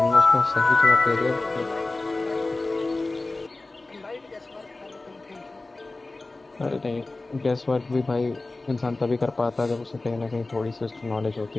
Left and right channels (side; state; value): right; quieter; 3.2 dB